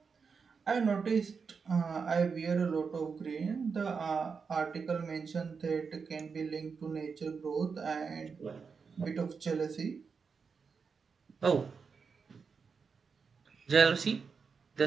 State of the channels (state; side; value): quieter; left; 5.5 dB